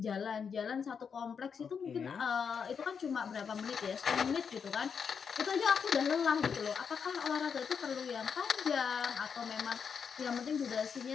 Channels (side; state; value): right; quieter; 6.5 dB